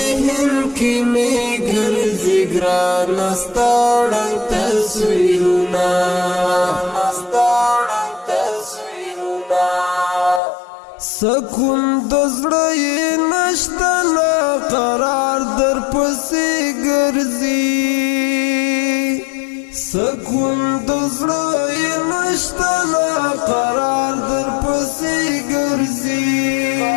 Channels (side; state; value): right; drops out; at 10.4 s